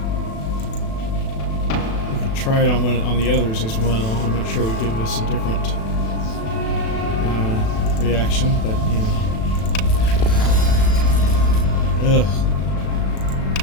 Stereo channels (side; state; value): right; late; 36 ms